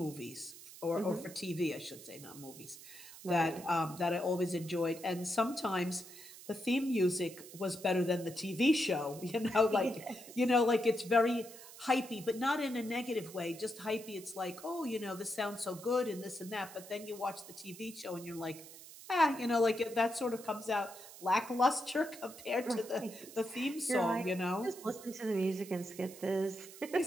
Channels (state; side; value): noise; right; hiss, 16 dB below the sound